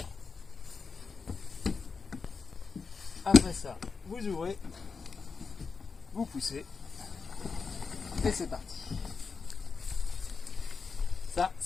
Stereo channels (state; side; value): quieter; right; 5.0 dB